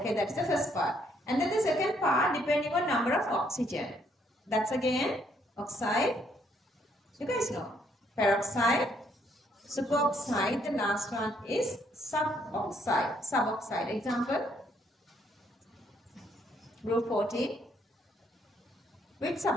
that's the first part. And then the second part, depending on number of oxygen. That's again oxide. You guys know. Peroxide, superoxide, the last one is suboxide. Suboxide. Example, group 14. Which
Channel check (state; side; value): normal; both; correlation 0.70